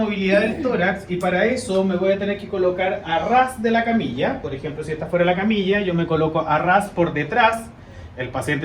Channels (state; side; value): identical; both; correlation 1.00